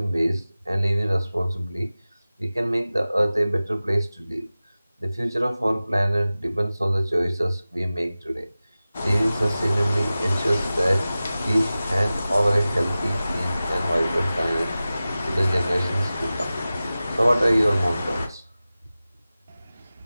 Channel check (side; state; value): both; inverted; correlation -0.96